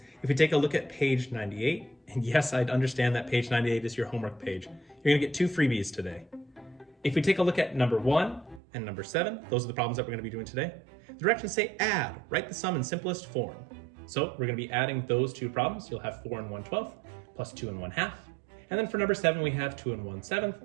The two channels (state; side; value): drops out; left; at 8.6 s